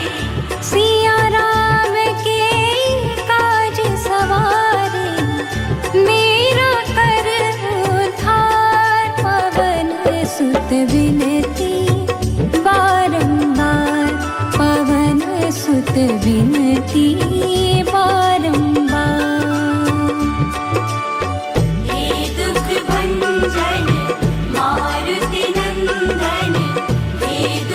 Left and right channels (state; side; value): identical; both; correlation 1.00